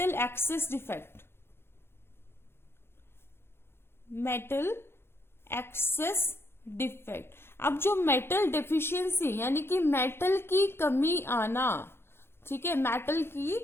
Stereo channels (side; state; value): right; late; 0.11 ms